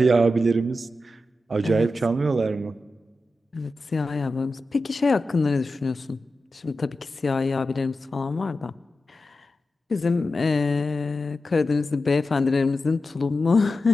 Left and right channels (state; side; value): normal; both; correlation 0.91